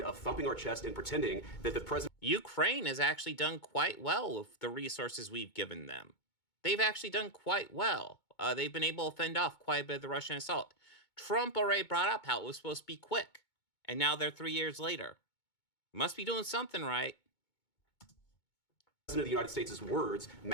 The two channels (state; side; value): late; right; 2.2 ms